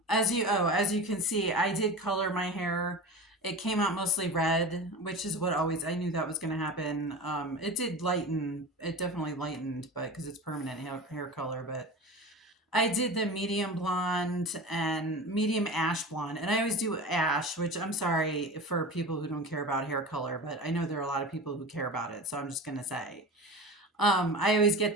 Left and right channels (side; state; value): both; normal; correlation 0.31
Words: as you can see, I did color my hair. It came out mostly red, which is what always I knew that was going to happen. It did lighten. It definitely lightened, but because it's permanent hair color. But I did the medium blonde and medium ash blonde, and I always do ash, which I'm sorry for people who don't care about hair color, but I know there are a lot of people who care about it, so I'm just gonna say. I always